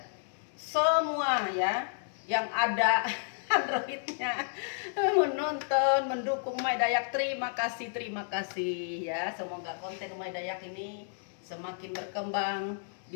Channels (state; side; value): silent; right; digital silence